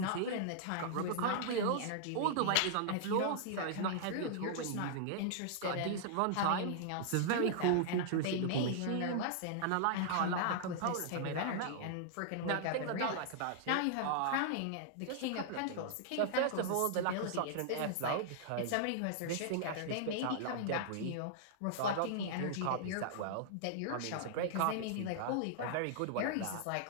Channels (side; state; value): both; different; correlation -0.01